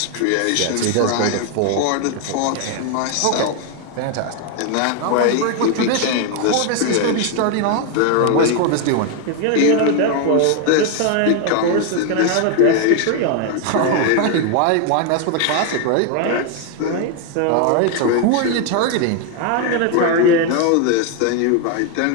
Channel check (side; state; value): both; different; correlation 0.01